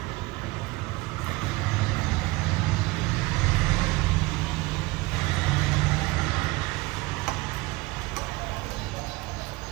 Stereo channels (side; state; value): left; quieter; 22.0 dB